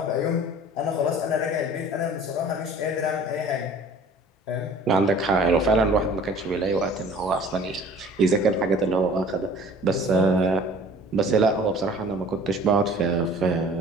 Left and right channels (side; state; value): both; normal; correlation 0.48